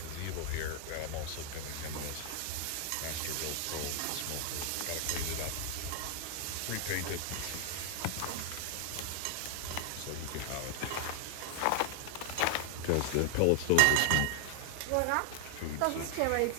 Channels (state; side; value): different; both; correlation 0.00